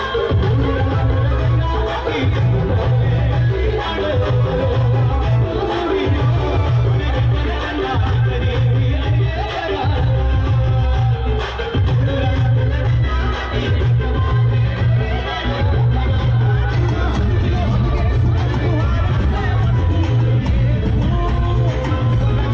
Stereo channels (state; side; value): identical; both; correlation 1.00